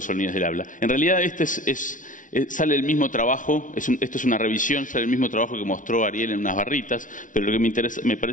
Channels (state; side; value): late; right; 0.38 ms